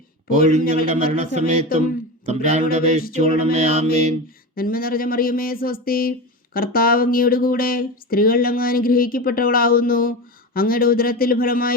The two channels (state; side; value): normal; both; correlation 0.23